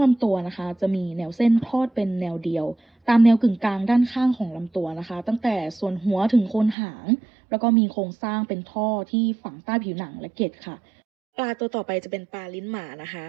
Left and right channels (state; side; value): drops out; left; at 6.8 s